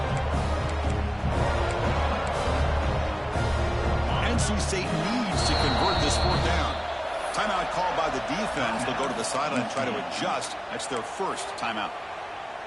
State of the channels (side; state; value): both; identical; correlation 1.00